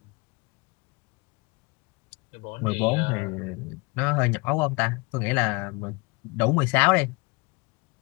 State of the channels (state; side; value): quieter; right; 27.8 dB